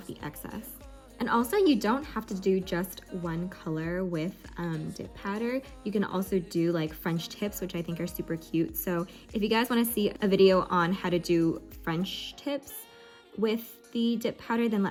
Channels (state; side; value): identical; both; correlation 1.00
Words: the excess. And also, you don't have to do just one color with dip powder. You can also do like French tips, which I think are super cute. So if you guys want to see a video on how to do French tips with the dip powder, then